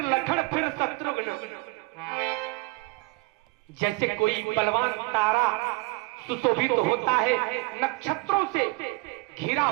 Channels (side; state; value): left; quieter; 24.9 dB